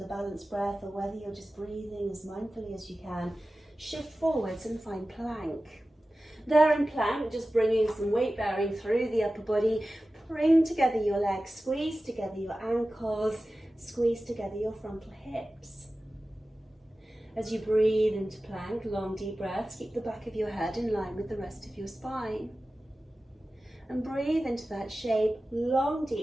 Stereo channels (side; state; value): both; normal; correlation 0.95